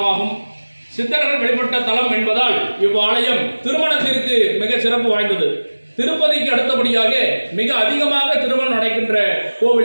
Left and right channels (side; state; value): both; inverted; correlation -1.00